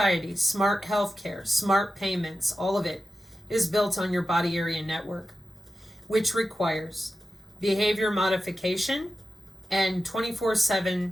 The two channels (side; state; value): both; normal; correlation 0.93